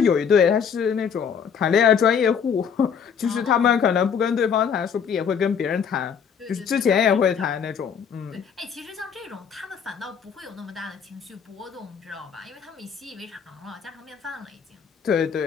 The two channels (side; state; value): right; quieter; 7.1 dB